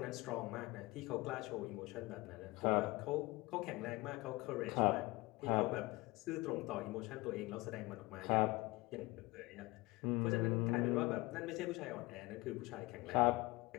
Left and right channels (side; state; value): right; quieter; 21.9 dB